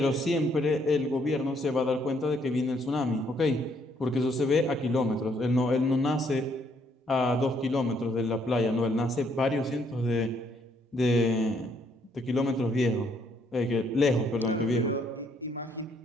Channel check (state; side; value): normal; both; correlation 0.69